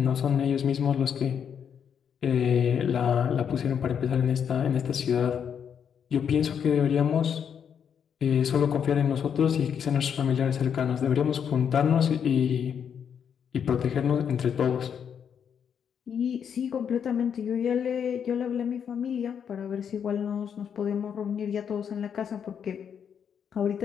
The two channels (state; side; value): quieter; right; 7.8 dB